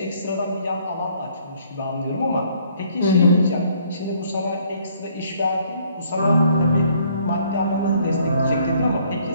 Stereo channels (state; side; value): inverted; both; correlation -0.63